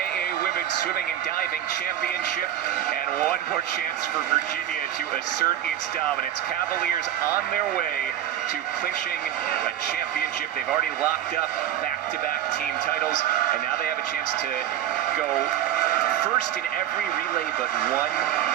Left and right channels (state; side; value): quieter; left; 11.5 dB